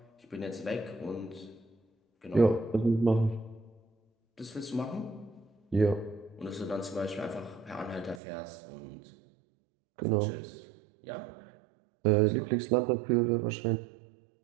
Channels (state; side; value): drops out; left; at 8.2 s